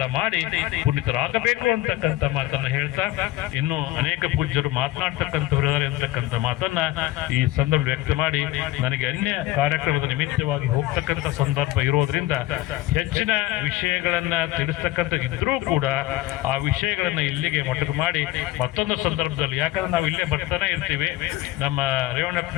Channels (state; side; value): quieter; right; 16.5 dB